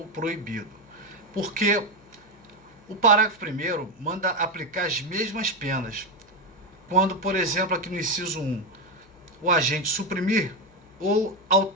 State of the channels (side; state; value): left; noise; hum, 27 dB below the sound